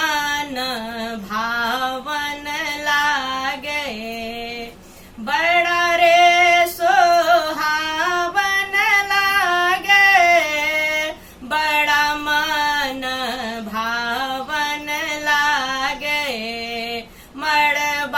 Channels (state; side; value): identical; both; correlation 1.00